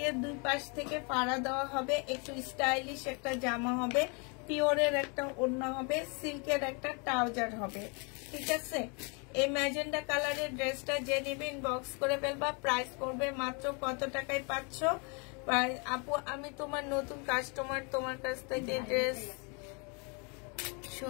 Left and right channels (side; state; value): right; quieter; 33.8 dB